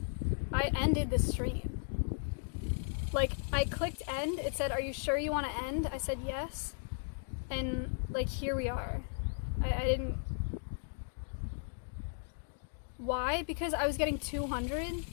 I ended the stream. Like, I clicked end, it said, are you sure you want to end? I said yes, and like, here we are. I didn't... Why? Because I was getting 200,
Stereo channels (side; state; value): right; silent; digital silence